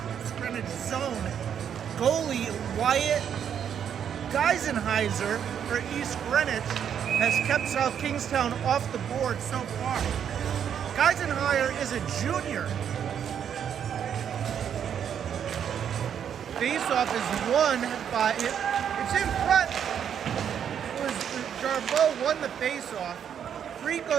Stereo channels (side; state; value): left; quieter; 8.5 dB